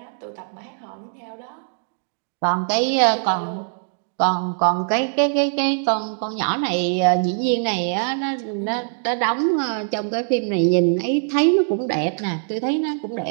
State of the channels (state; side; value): silent; left; digital silence